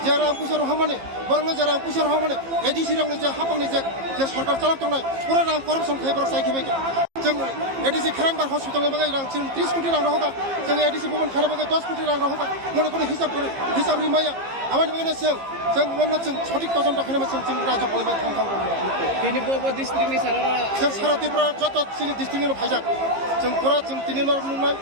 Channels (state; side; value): late; left; 15 ms